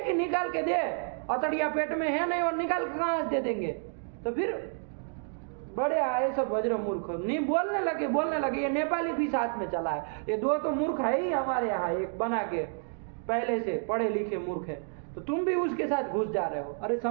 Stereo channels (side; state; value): left; silent; 58 dB below the other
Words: कि निकाल के दे, अतड़िया पेट में है नहीं और निकाल के कहाँ से दे देंगे। तो फिर बड़े आए सब वज्र मूर्ख नहीं बोलने लगे। ये नेपाली भी साथ में चला है, ये दो तो मूर्ख है ही हमारे यहाँ, एक बना के पहले से पढ़े लिखे मूर्ख है, तो तुम भी उसके साथ घुस जा रहे हो। अरे